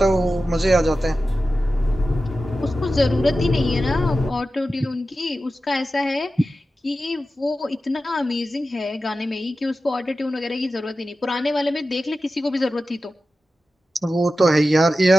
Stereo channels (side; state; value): both; normal; correlation 0.93